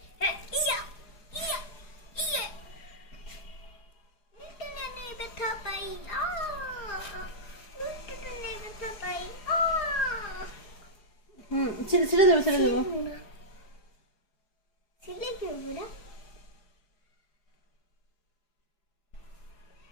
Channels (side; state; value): right; late; 4.8 ms